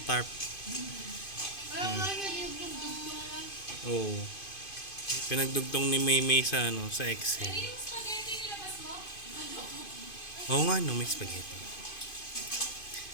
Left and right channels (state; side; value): late; right; 2.5 ms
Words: tarp. Oh. Pinagdugtong ni Maymay sa sa Excel. Yung spaghetti nilabas mo? Oo nga no, may spaghetti.